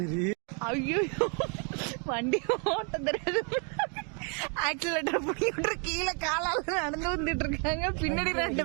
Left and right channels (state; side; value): quieter; left; 37.9 dB